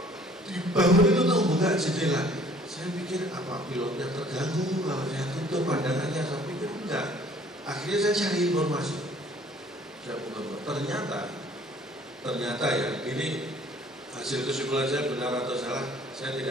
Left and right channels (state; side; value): normal; both; correlation 0.55